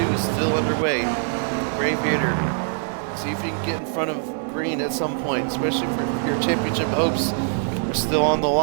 is still underway. Craviator, see if you can get in front of Green at some point, especially for your championship hopes are still on the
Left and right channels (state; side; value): silent; left; 63 dB below the other